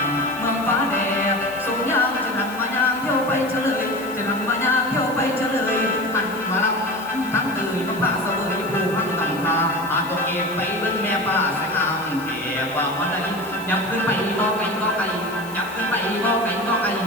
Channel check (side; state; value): left; noise; hiss, 18 dB below the sound